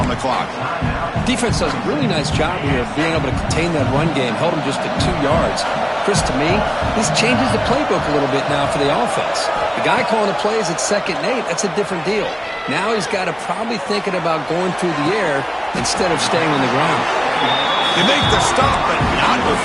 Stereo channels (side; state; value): both; identical; correlation 1.00